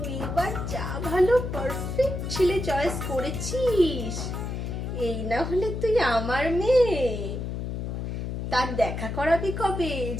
এবার যা ভালো পারফেক্ট ছেলে চয়েস করেছিস। এই না হলে তুই আমার মেয়ে। তার দেখা করাবি কবে?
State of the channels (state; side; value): noise; left; hum, 4 dB below the sound